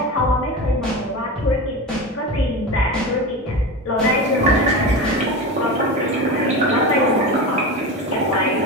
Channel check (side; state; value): both; normal; correlation 0.24